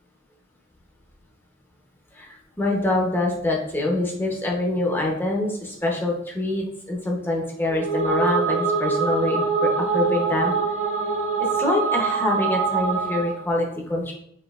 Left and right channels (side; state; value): both; normal; correlation 0.35